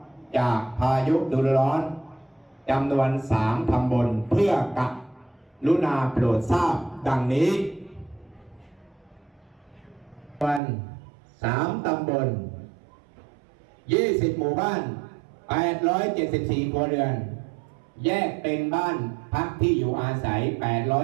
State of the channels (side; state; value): left; drops out; at 10.6 s